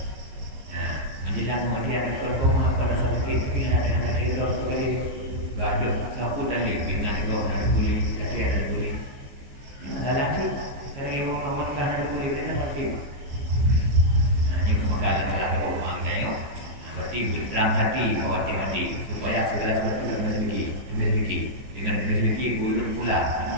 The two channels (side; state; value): left; late; 15 ms